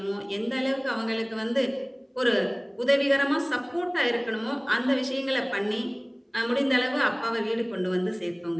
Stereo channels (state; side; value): identical; both; correlation 1.00